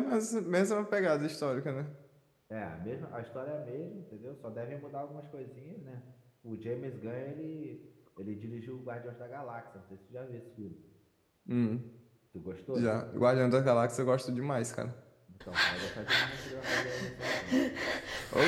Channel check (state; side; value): identical; both; correlation 1.00